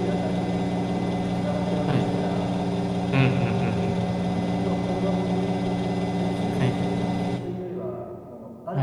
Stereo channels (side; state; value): both; identical; correlation 1.00